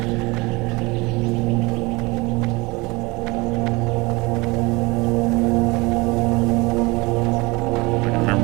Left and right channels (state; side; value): quieter; left; 24.3 dB